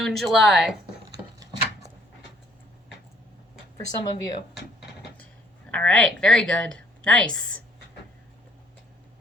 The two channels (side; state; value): both; normal; correlation 0.63